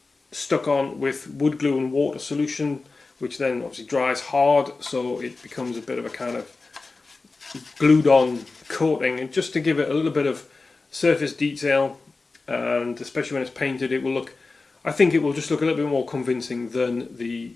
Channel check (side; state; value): right; quieter; 3.8 dB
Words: stuck on with wood glue and water solution, which then obviously dries hard, so it becomes a bit of a kind of glued on coating, and just to give it a little bit of surface detail, and especially when it's painted, it will look, I think it will just look a little bit more convincing than the